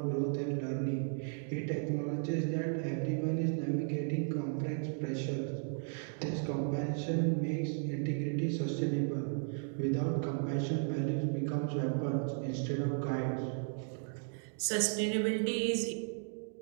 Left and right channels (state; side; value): silent; left; 54 dB below the other